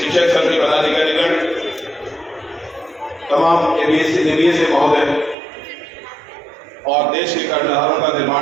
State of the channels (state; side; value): drops out; left; at 5.4 s